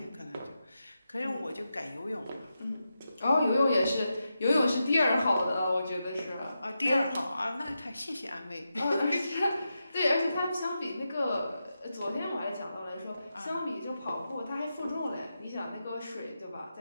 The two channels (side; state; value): both; inverted; correlation -0.88